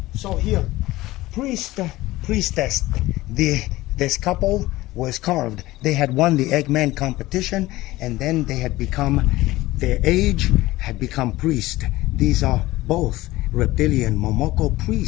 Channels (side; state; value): right; quieter; 18.0 dB